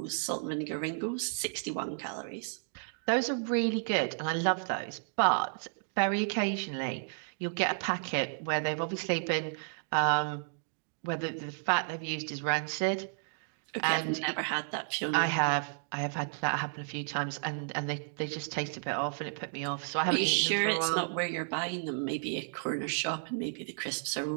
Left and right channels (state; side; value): silent; left; digital silence